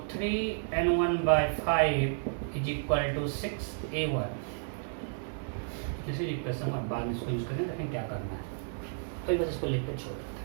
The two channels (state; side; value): silent; left; digital silence